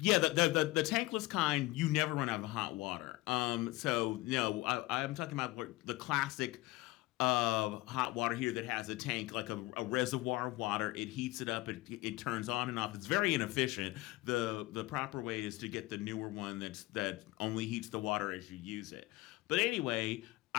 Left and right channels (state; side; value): quieter; right; 19.7 dB